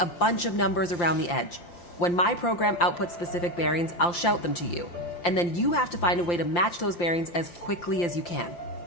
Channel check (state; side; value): late; right; 5.8 ms